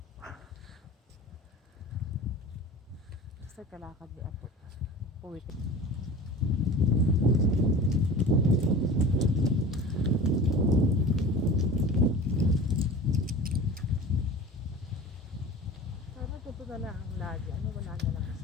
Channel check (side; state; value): both; normal; correlation 0.37